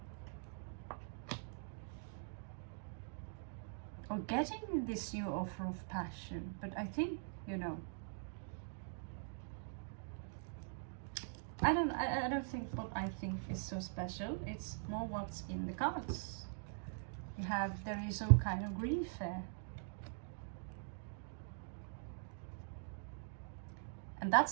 Or getting this new offer of passion. But I think, you know, I don't think what I think is so special. It's more what's in the cards. There is some kind of grief there. And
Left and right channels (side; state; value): left; silent; digital silence